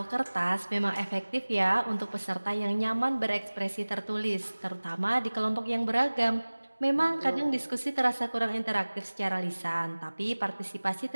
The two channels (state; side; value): inverted; both; correlation -1.00